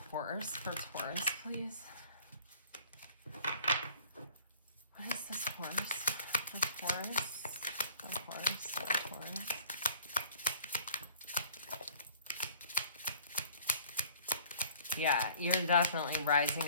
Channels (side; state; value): both; inverted; correlation -0.51